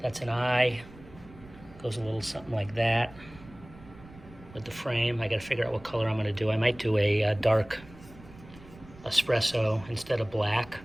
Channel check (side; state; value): right; noise; rumble, 20 dB below the sound